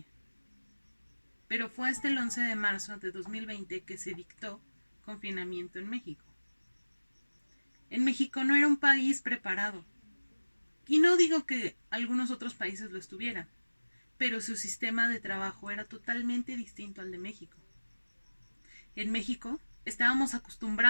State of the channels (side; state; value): both; inverted; correlation -1.00